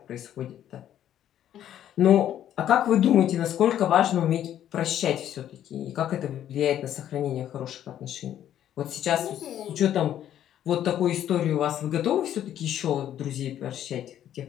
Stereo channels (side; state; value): right; quieter; 11.1 dB